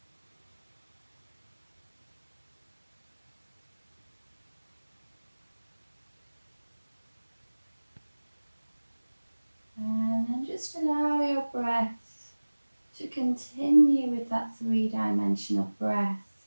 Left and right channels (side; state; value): both; inverted; correlation -1.00